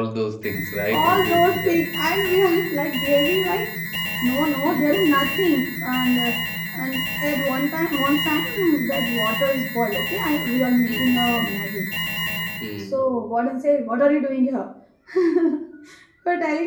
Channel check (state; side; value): identical; both; correlation 1.00